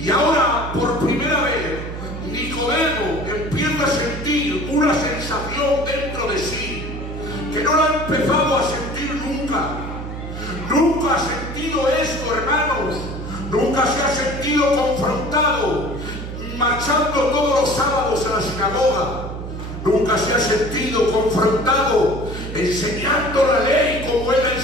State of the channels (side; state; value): right; noise; hum, 8 dB below the sound